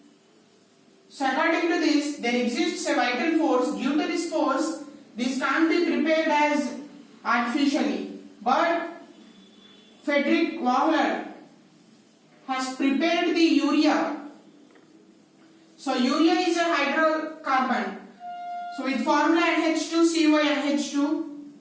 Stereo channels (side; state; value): both; identical; correlation 1.00